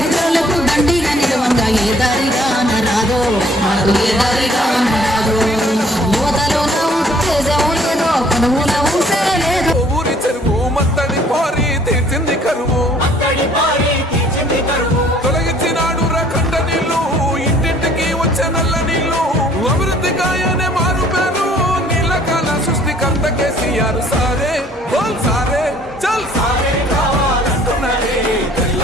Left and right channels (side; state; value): both; normal; correlation 0.58